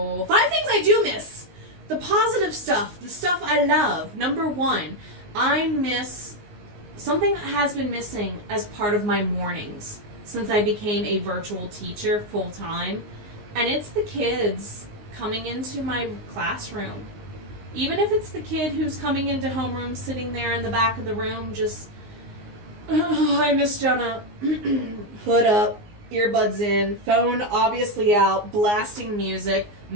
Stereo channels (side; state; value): left; late; 19 ms